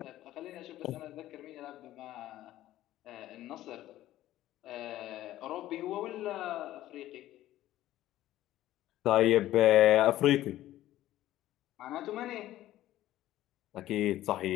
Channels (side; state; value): right; quieter; 14.3 dB